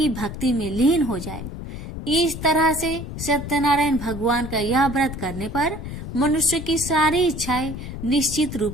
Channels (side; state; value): left; noise; rumble, 8 dB below the sound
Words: भक्ति में लीन हो जाए। इस तरह से सत्यनारायण भगवान का यह व्रत करने पर मनुष्य की सारी इच्छाएं निश्चित